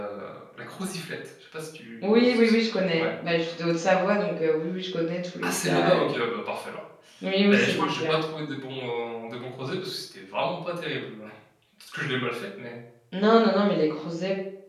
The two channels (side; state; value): both; identical; correlation 1.00